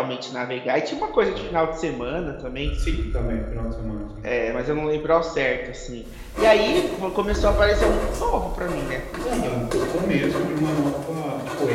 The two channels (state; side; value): identical; both; correlation 1.00